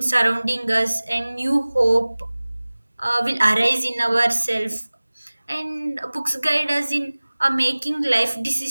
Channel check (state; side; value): inverted; both; correlation -1.00